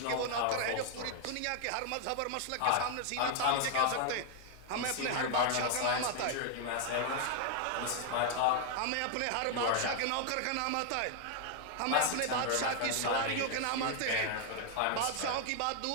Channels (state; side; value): different; both; correlation 0.00